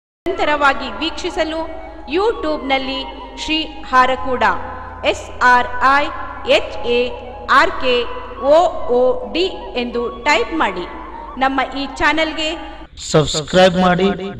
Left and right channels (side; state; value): both; identical; correlation 1.00